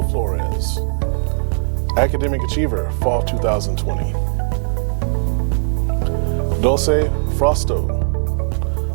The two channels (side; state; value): left; silent; digital silence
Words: Flores, Academic Achiever, Fall 2020. Dulce Frosto,